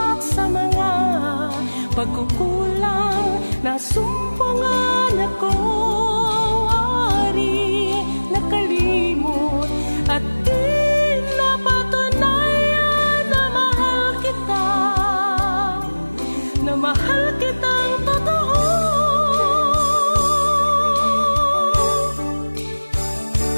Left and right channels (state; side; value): inverted; both; correlation -1.00